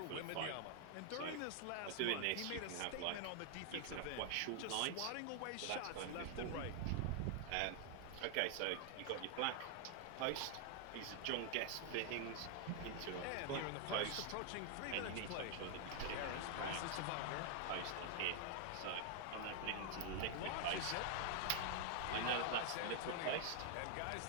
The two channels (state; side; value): different; both; correlation 0.00